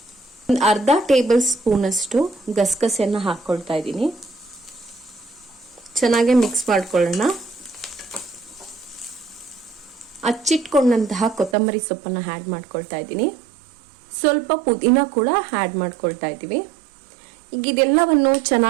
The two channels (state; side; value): drops out; left; at 11.6 s